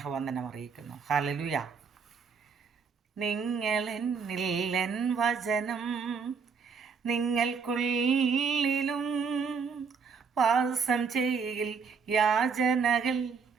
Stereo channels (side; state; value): left; quieter; 5.7 dB